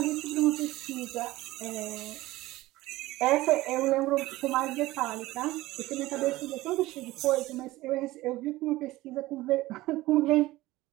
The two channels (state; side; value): quieter; left; 18.0 dB